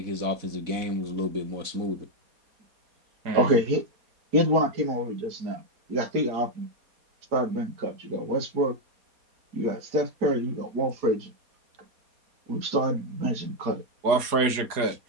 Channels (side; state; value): left; late; 4.2 ms